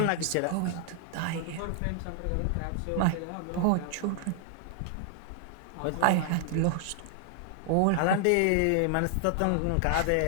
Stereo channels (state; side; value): different; both; correlation 0.00